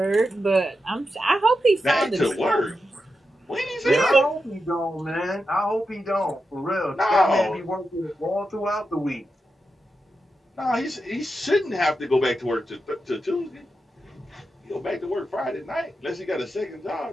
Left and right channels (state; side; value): normal; both; correlation 0.88